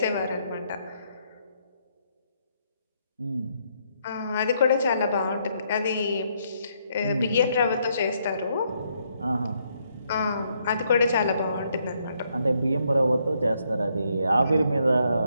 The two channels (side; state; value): both; inverted; correlation -0.74